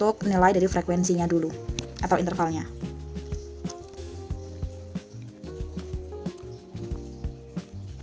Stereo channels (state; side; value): identical; both; correlation 1.00